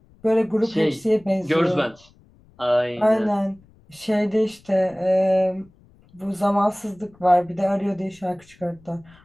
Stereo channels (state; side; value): noise; left; rumble, 29 dB below the sound